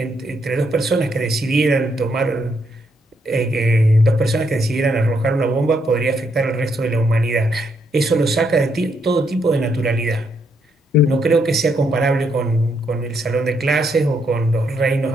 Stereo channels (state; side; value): normal; both; correlation 0.76